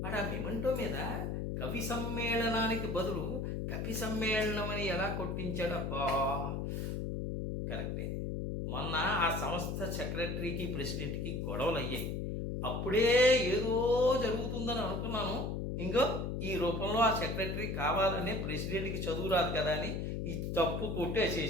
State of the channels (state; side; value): noise; left; hum, 2 dB below the sound